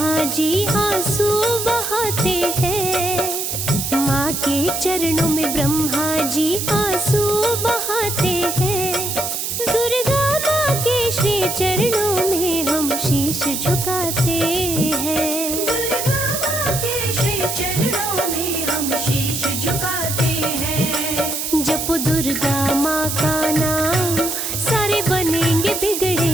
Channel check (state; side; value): noise; right; hiss, 3 dB below the sound